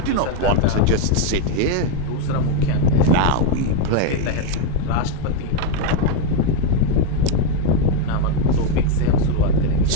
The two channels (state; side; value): different; both; correlation 0.02